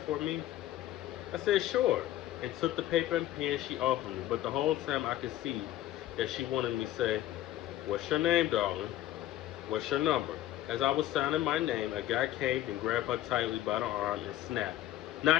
for me?" I said, "Sure," and took the paper and pen she offered me, but the whole time I could see that she wanted me to say, "What's your name, darling? What's your number?" As I was signing my name, a guy came and grabbed her tightly by the arm and snapped,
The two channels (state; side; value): quieter; right; 13.8 dB